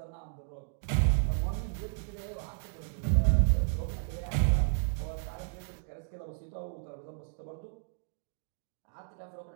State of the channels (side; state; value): left; silent; digital silence